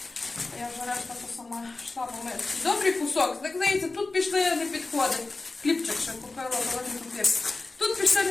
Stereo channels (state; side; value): quieter; right; 3.4 dB